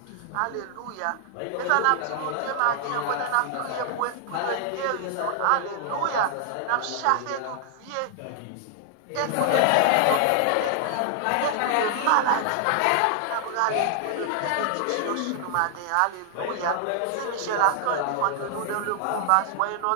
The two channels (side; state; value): both; different; correlation 0.00